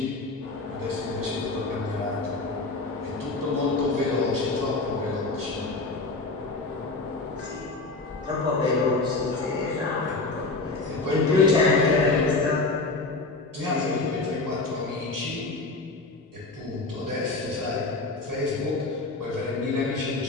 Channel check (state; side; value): quieter; right; 3.4 dB